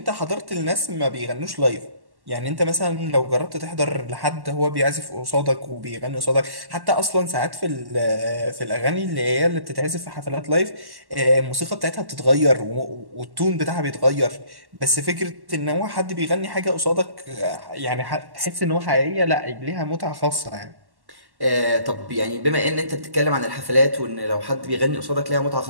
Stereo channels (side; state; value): left; late; 1.1 ms